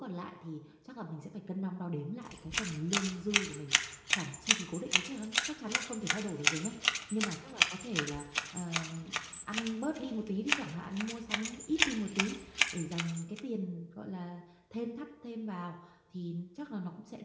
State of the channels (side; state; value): both; identical; correlation 1.00